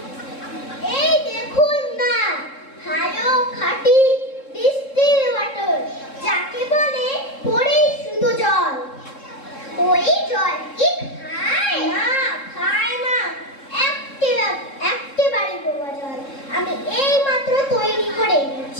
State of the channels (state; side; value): late; right; 3.7 ms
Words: এই দেখুন না, ভালো খাঁটি ডিস্টিল ওয়াটার, যাকে বলে পরিশুদ্ধ জল। ওই জল কি খায়? না,